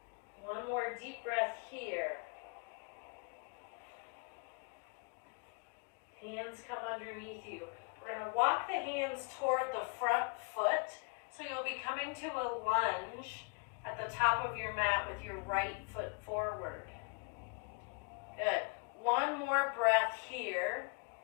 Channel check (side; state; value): right; quieter; 36.0 dB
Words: One more deep breath here. Hands come underneath you. We're going to walk the hands toward the front foot. So you'll be coming to a lunge at the top of your mat with your right foot forward. Good. One more breath here.